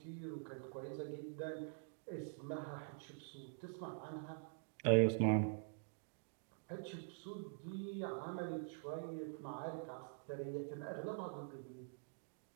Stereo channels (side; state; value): left; silent; digital silence